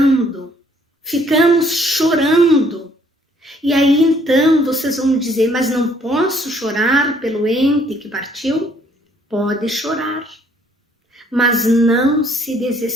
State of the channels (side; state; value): both; normal; correlation 0.63